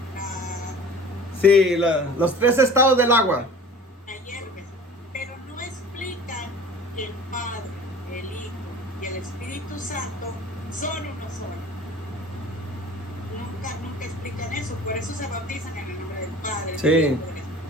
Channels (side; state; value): both; normal; correlation 0.42